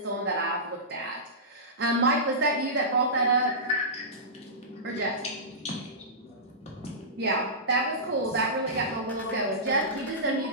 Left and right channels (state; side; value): normal; both; correlation -0.18